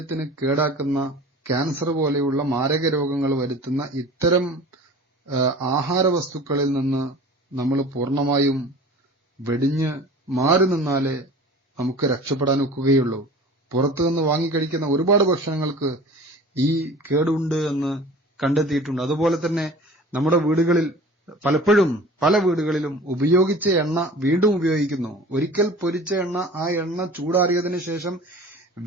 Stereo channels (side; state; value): both; normal; correlation 0.42